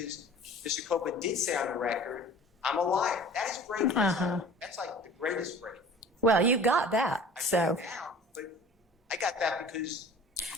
Mr. Copeland did say on the record, I'm a liar. That is Brady. That's like the greatest Brady. Well, you got that, so. But I got that because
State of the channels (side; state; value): both; normal; correlation 0.44